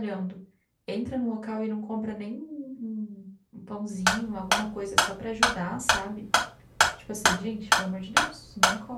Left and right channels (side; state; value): both; identical; correlation 1.00